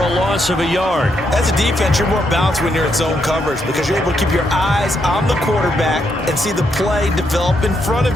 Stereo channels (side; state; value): both; normal; correlation 0.78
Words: loss of a yard. As a defense, you're more balanced when you're in zone coverage because you're able to keep your eyes on the quarterback and see the play develop in front